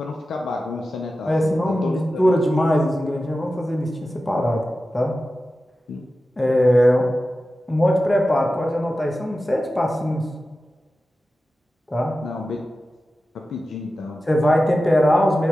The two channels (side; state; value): both; normal; correlation 0.94